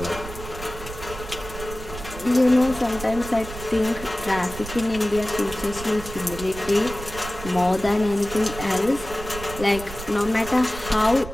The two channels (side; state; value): right; noise; rumble, 11 dB below the sound